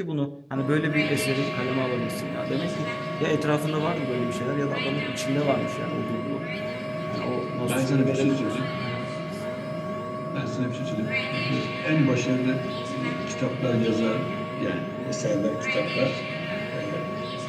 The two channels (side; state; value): both; identical; correlation 1.00